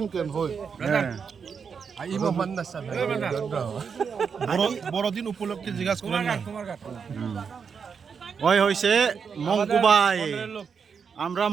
ken hoy. Ay mo man na sa. Borodin upulok ke jigas kuran. ওই হইছে মঙ্কুবাই আমরা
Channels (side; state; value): left; quieter; 6.2 dB